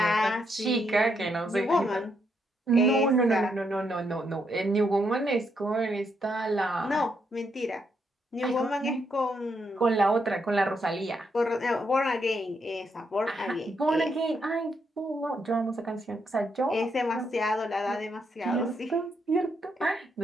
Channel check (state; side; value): normal; both; correlation 0.78